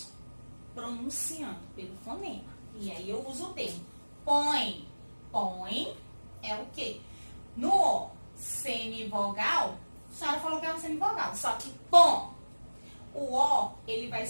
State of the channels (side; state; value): both; inverted; correlation -1.00